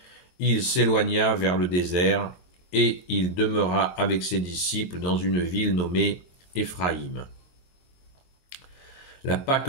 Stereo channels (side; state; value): right; late; 22 ms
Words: Il s'éloigna vers le désert et il demeura avec ses disciples dans une ville nommée Éphraïm. La Pâque